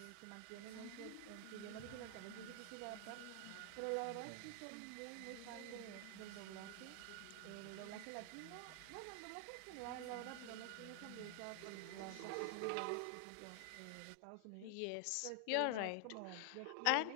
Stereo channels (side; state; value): both; different; correlation 0.00